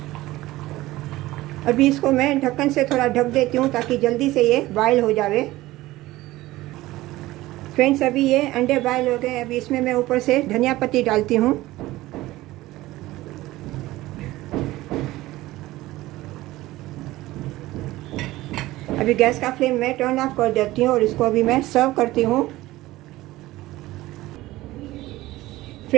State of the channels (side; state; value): left; quieter; 17.5 dB